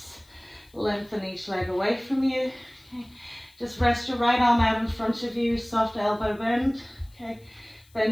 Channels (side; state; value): left; noise; hiss, 30 dB below the sound